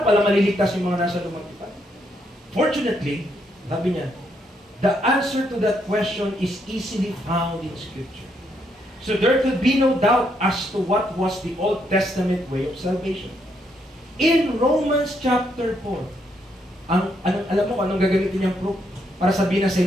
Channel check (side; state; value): both; normal; correlation 0.75